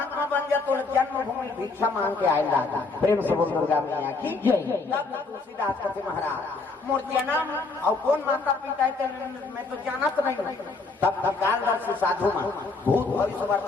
बन जा, तो जन्मभूमि भिक्षा मांग के आए लागा। प्रेम से बोल दुर्गा मैया की जय। तब तुलसीदास कथे महाराज मोर जन्म और कौन माता पिता है मैं तो जानत नहीं। तब कालदर्शी साधु मन भूत भविष्य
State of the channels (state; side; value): quieter; right; 3.8 dB